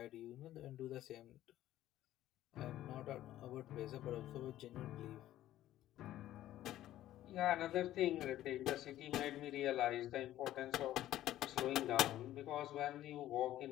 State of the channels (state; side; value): quieter; right; 13.6 dB